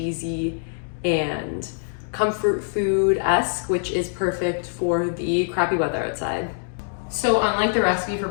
and comfort food-esque, which is perfect for the crappy weather outside. So unlike the recipe for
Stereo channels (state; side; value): silent; right; digital silence